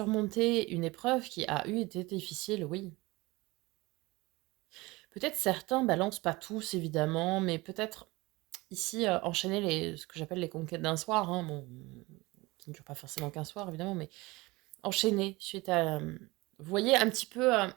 une épreuve qui a été difficile, oui. Peut-être certains balancent pas tous, évidemment, mais peut-être ici enchaîner ce que j'appelle les conquêtes d'un soir, hein, bon, qui ne dure pas forcément qu'un soir, évidemment, mais enchaîner suite à... vous voyez, un petit peu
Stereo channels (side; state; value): left; quieter; 22.0 dB